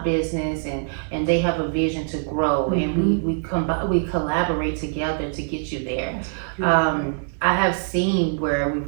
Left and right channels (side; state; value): left; silent; digital silence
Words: business, and they have a vision to grow, and we collaborate together to get you there. I have seen where